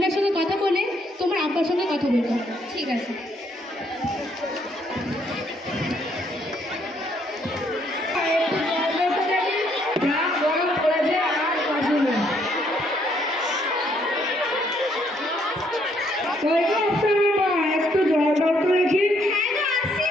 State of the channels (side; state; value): both; normal; correlation 0.70